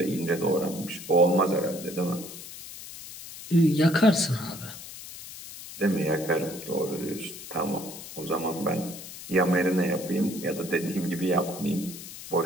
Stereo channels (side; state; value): left; noise; hiss, 13 dB below the sound